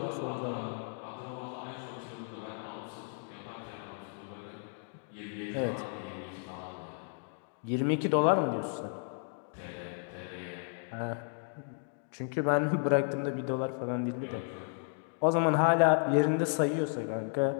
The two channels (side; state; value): right; silent; 55 dB below the other